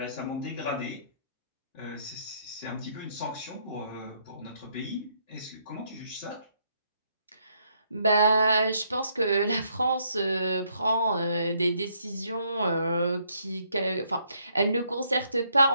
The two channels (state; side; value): inverted; both; correlation -0.71